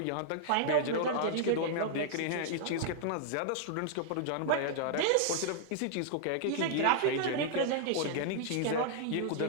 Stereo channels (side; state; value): both; different; correlation -0.01